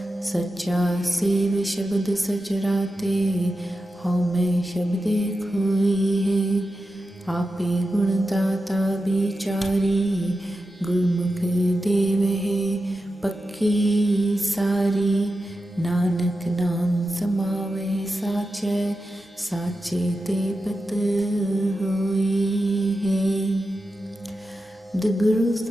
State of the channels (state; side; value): normal; both; correlation 0.91